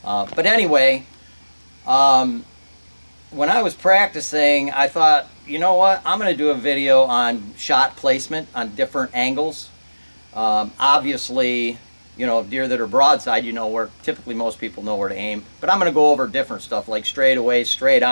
But anyway, when I was practicing, I thought, you know what? I'm going to do a video on shot placement on different angles. Obviously, you know, deer that are broadside, you know where, typically most people know where to aim. But I'm going to go over different stuff like straight away, straight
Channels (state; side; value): inverted; both; correlation -1.00